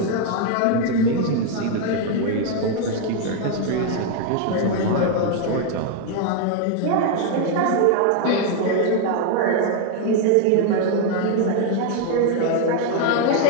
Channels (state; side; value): different; both; correlation 0.01